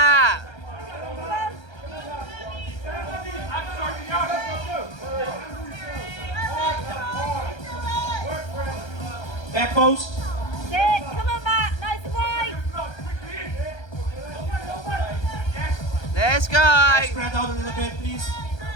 Back post. Sit. Come on, Matt. Nice and wide. Let's go. Spread out a little bit, please.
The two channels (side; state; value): right; late; 1.3 ms